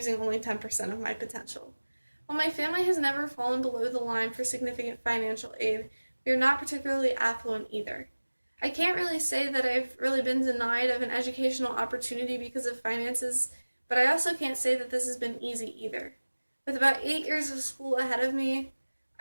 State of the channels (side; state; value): both; inverted; correlation -1.00